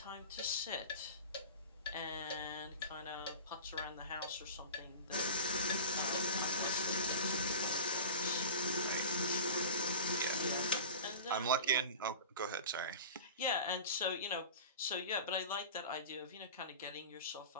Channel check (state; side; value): inverted; both; correlation -0.34